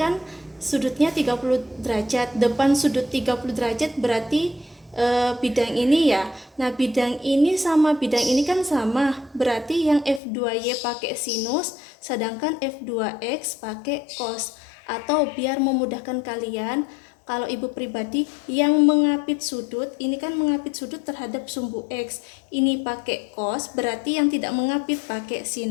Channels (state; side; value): drops out; right; at 10.2 s